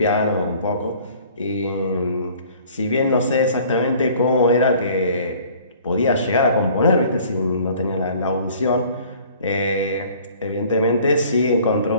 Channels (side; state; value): both; inverted; correlation -0.52